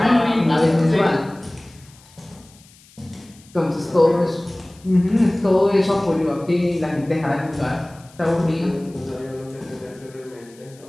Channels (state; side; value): noise; left; hiss, 26 dB below the sound